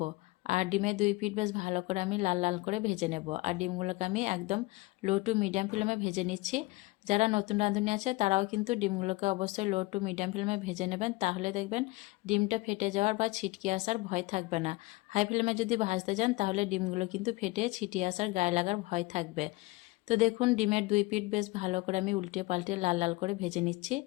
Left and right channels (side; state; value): right; quieter; 21.7 dB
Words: আর ডিমের 2 পিঠ বেশ ভালো করে আমি লাল লাল করে ভেজে নেব। আর ডিমগুলোকে আমি একদম লো টু মিডিয়াম ফ্লেমে ভেজে নিচ্ছি। যারা নতুন রাঁধুনি আছে তারাও কিন্তু ডিমগুলোকে অবশ্যই লো টু মিডিয়াম ফ্লেমে ভেজে নেবেন, তাহলে দেখবেন ডিমটা ফেটে যাওয়ার বা ছিটকে আসার ভয় থাকবে না। হাই ফ্লেমে যদি ভাজতে যান তাহলে ডিমগুলো কিন্তু ফেটে ছিটিয়ে আসার গায়ে লাগার ভয় থাকবে। তো দেখুন ডিমের 2 পিঠ বেশ ভালো করে আমি উল্টে পাল্টে লাল লাল করে ভেজে নিচ্ছি।